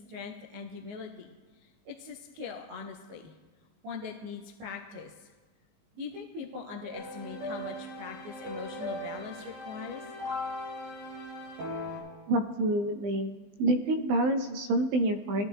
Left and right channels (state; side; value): late; left; 20 ms